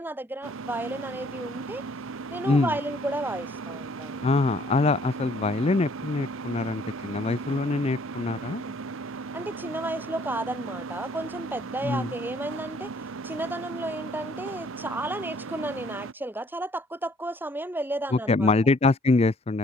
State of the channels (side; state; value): both; normal; correlation 0.61